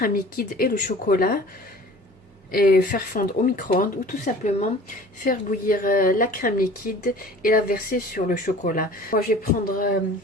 liquide et le chocolat. Et faire fondre au micro-ondes ou tout simplement faire bouillir la crème liquide et la verser sur le chocolat. Moi, je vais prendre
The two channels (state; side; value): normal; both; correlation 0.45